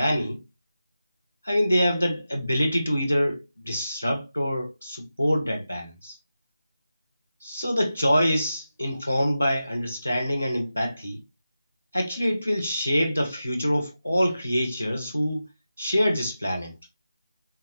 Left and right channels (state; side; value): inverted; both; correlation -0.92